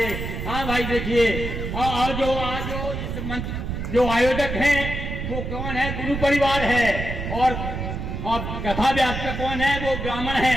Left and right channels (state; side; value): noise; right; rumble, 4 dB below the sound